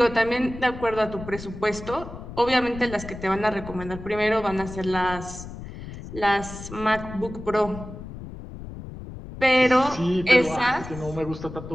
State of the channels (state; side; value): noise; left; rumble, 12 dB below the sound